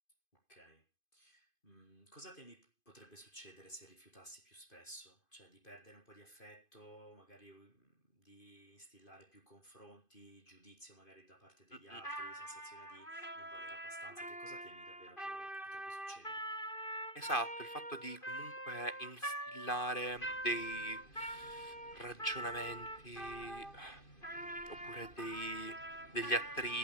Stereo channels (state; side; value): late; right; 2.5 ms